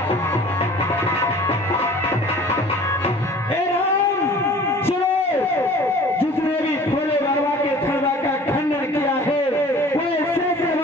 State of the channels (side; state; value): both; normal; correlation 0.47